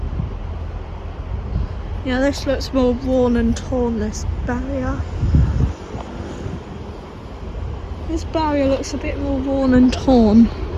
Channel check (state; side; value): identical; both; correlation 1.00